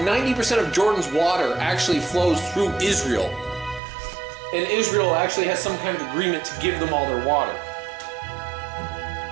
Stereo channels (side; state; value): left; drops out; at 3.8 s